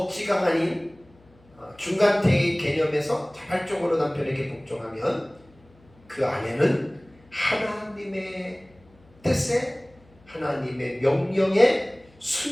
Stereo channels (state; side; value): noise; left; hum, 29 dB below the sound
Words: 아닌 중간태의 개념에서 자발적으로 남편에게 복종하면 그 아내는 하나님의 뜻에, 하나님의 명령에